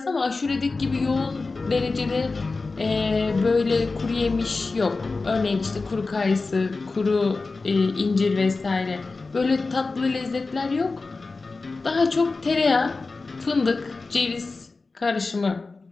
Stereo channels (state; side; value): quieter; right; 3.8 dB